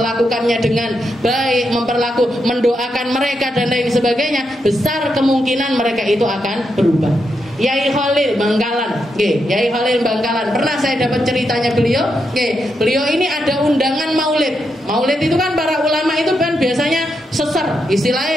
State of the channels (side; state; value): both; normal; correlation 0.83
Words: dengan baik, mendoakan mereka dan lain sebagainya, besar kemungkinan mereka itu akan berubah. Yai Khalil Bangkalan, Yai Khalil Bangkalan, pernah saya dapat ceritanya beliau. Beliau ini ada undangan maulid. Maulid itu kan para ulama itu kan biasanya seser,